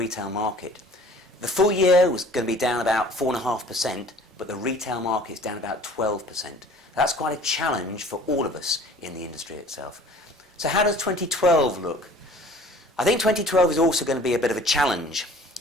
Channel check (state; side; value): normal; both; correlation 0.49